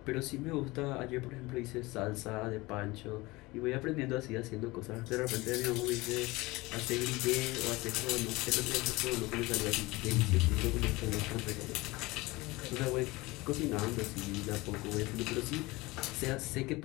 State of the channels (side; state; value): right; quieter; 21.8 dB